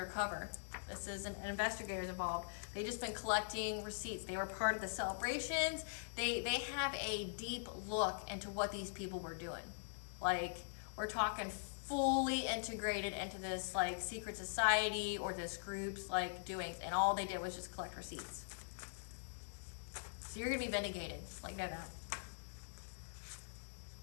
This is an investigators involved. They just been collecting receipts. They were part of the celebrations. They have a deep look into what these people were doing. Like, we're talking fully integrated into this like secret society or this group's like doings, and all they did was just collect receipts. So you're gonna be vindicated, like, know that.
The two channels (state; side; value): silent; right; digital silence